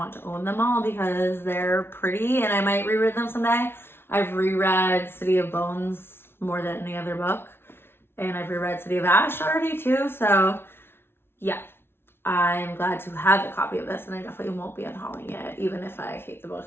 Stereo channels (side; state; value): right; late; 0.11 ms